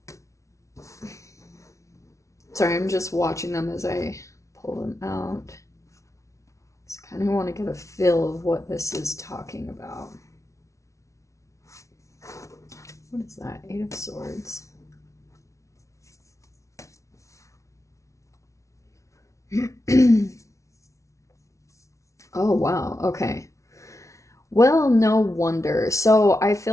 Sorry, I'm just watching them as I pull them out. Just kind of want to get a feel of what this is talking about. What is that? Eight of Swords. Oh, wow. Okay. Well, no wonder. So I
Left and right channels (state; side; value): late; right; 0.14 ms